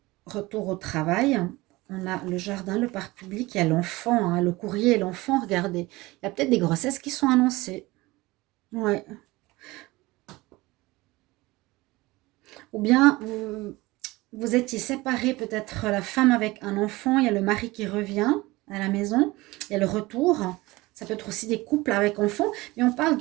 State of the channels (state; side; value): quieter; left; 20.8 dB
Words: Retour au travail. On a le jardin, le parc public, il y a l'enfant, hein, le courrier et l'enfant, regardez. Il y a peut-être des grossesses qui sont annoncées. Ouais. Ou bien, vous étiez séparés, peut-être la femme avec un enfant, il y a le mari qui revient à la maison, il y a le retour. Ça peut être aussi des couples avec enfants, mais on parle